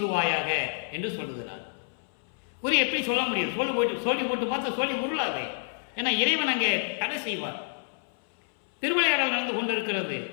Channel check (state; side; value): silent; right; 59 dB below the other